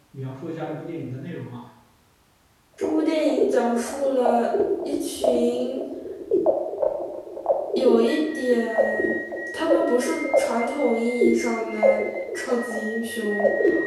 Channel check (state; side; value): identical; both; correlation 1.00